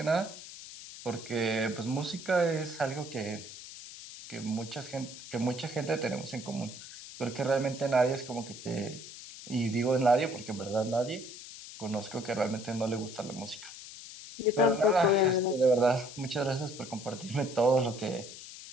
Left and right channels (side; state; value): left; noise; hiss, 13 dB below the sound